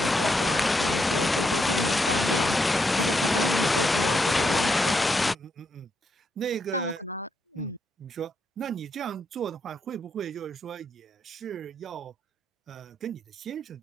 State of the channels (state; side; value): normal; both; correlation 0.80